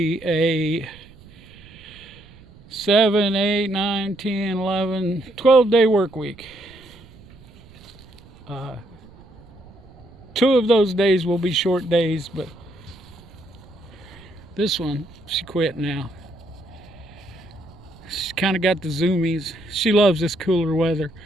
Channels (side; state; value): right; noise; rumble, 23 dB below the sound